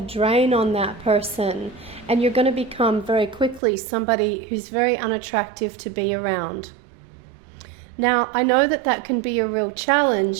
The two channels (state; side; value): drops out; left; at 3.6 s